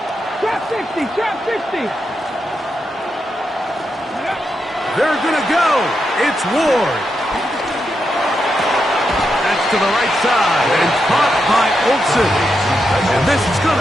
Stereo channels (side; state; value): both; normal; correlation 0.85